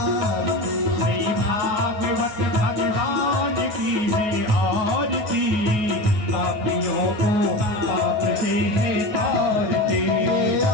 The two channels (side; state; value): left; late; 9.4 ms